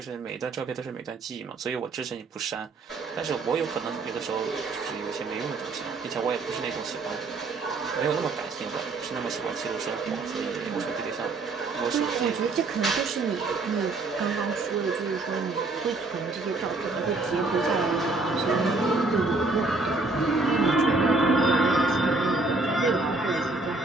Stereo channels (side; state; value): left; quieter; 3.5 dB